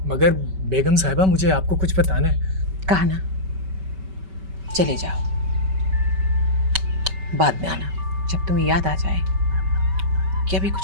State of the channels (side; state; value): left; late; 5.2 ms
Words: मगर बेगम साहिबा मुझे आपको कुछ बताना है। कहा ना, चले जाओ, बाद में आना जब तुम्हें याद आ जाए कि अभी